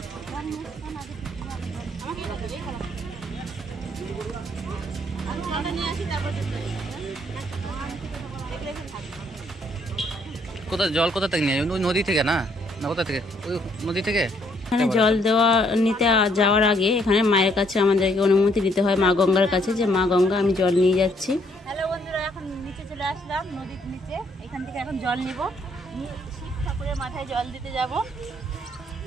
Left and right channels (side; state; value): both; normal; correlation 0.68